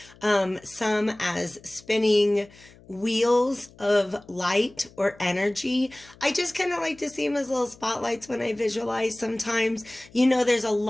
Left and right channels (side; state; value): left; noise; hum, 25 dB below the sound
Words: some as spinning wheels of light or energy. I just kind of like to see them as little spotlights when I visualize sometimes. You know, there's a